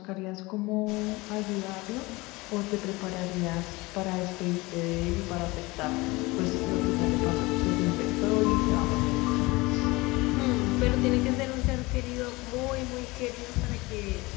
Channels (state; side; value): quieter; right; 22.5 dB